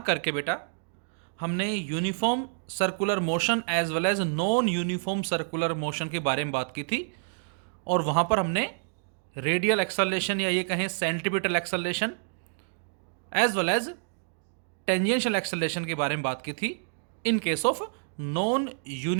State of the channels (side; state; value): left; silent; digital silence